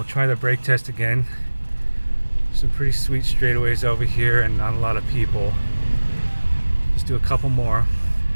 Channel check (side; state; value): both; inverted; correlation -1.00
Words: try the brake test again. Some pretty sweet straightaways over here and not a lot of people. Let's do a couple more.